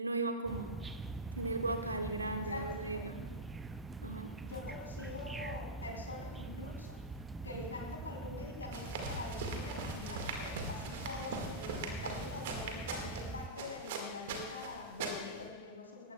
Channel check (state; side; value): normal; both; correlation -0.12